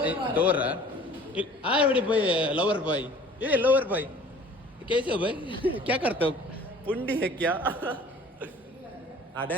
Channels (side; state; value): both; normal; correlation 0.49